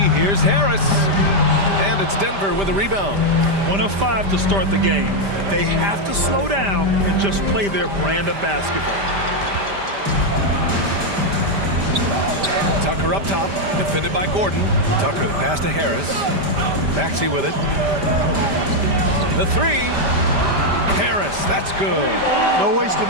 Here's Harris. And it's Denver with a rebound. 1 of 5 to start the game. They have to slow down and just play their brand of basketball. Tucker up top, defended by Gordon. Tucker the pass to Harris. Maxey with it. The 3. Harris, that's good. No wasted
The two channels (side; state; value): left; late; 5.0 ms